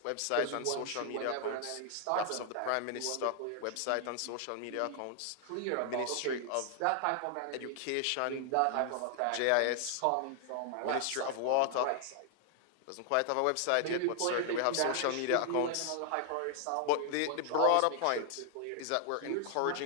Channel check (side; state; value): both; different; correlation 0.00